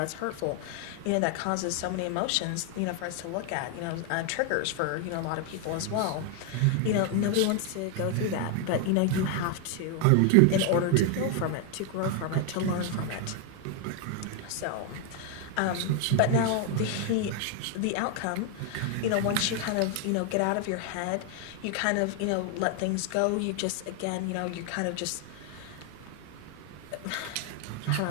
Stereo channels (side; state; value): both; different; correlation 0.01